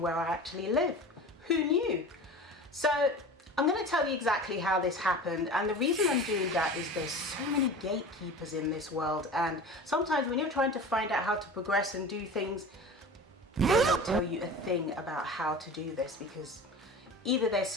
I actually live. Who knew? So I'm going to tell you exactly how this happened, and the reason I'm doing that is there's so many gatekeepers in this world, and sometimes when you're trying to find out how to progress and do things, they don't tell you a thing about how to do this, because either they're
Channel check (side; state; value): both; normal; correlation 0.35